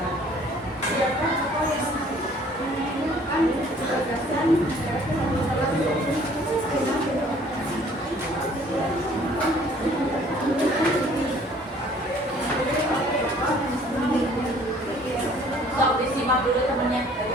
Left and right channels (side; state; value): both; normal; correlation 0.56